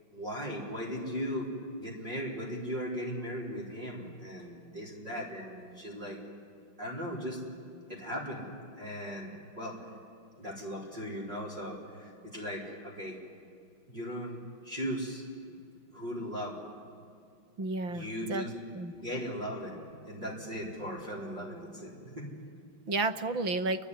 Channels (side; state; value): left; late; 5.9 ms